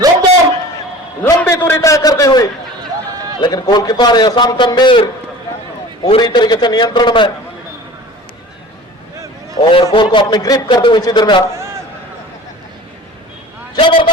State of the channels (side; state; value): both; normal; correlation 0.41